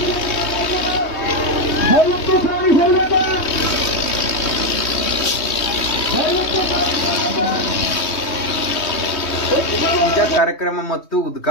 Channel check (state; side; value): late; right; 3.2 ms